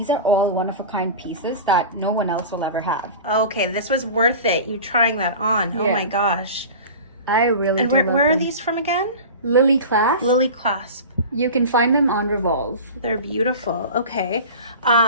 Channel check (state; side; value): inverted; both; correlation -0.34